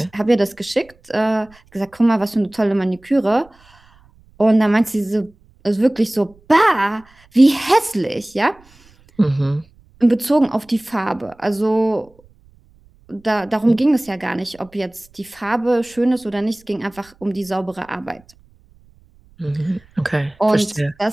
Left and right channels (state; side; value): noise; right; rumble, 30 dB below the sound